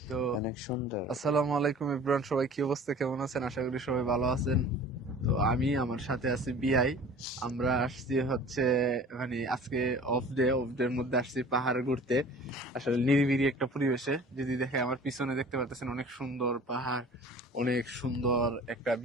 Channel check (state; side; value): normal; both; correlation 0.44